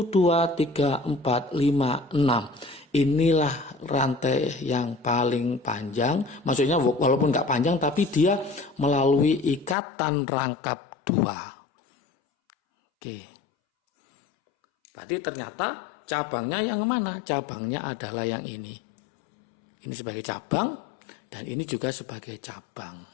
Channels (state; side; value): drops out; right; at 9.8 s